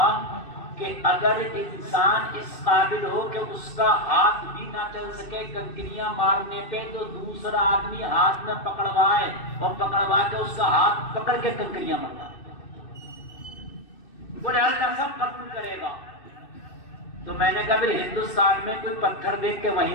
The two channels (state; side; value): late; right; 2.6 ms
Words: کہ اگر انسان اس قابل ہو کہ اس کا ہاتھ بھی نہ چل سکے کنکریاں مارنے پہ، تو دوسرا آدمی ہاتھ میں پکڑوائے اور پکڑوا کے اس کا ہاتھ پکڑ کے کنکریاں مارتا. بولے اللہ سب قبول کرے گا. تو میں نے کہا پھر ہندوستان میں کوئی پتھر دیکھ کے